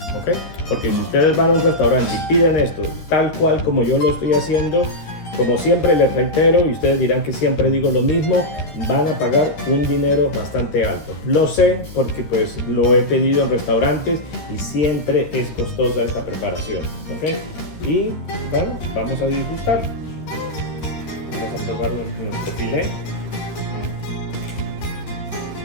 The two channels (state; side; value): late; right; 13 ms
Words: ¿ok? Porque si ustedes van a un restaurante y piden esto tal cual como yo lo estoy haciendo, como siempre les reitero, y ustedes dirán que siempre digo lo mismo, van a pagar un dinero bastante alto. Lo sé porque pues lo he pedido en restaurantes y siempre es costosa esta preparación, ¿ok? Y bueno, vamos a disgustar. Vamos a probar nuestro filet.